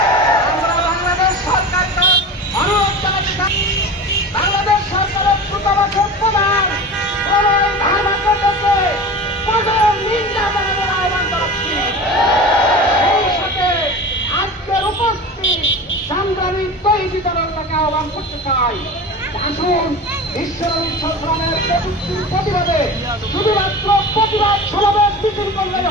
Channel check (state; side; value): normal; both; correlation 0.32